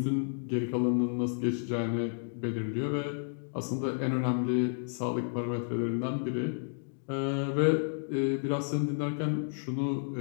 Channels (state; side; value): silent; right; digital silence